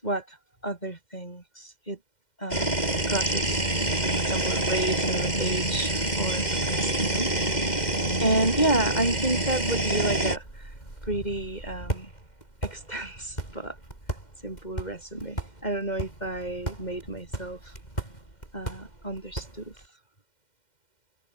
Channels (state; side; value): late; right; 2.1 ms